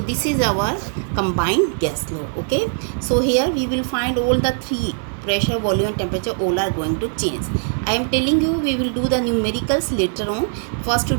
is our combined gas law. Okay, so here we will find all the three: pressure, volume and temperature, all are going to change. I am telling you we will do the numericals later on. First to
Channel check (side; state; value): left; silent; digital silence